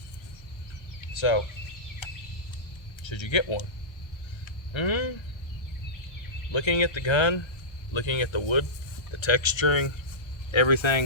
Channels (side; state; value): right; late; 1.3 ms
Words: So, should you get one? Looking at the gun, looking at the wood, the texturing,